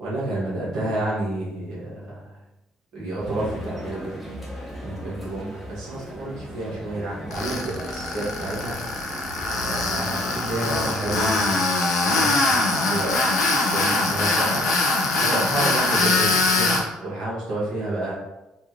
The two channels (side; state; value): both; normal; correlation 0.57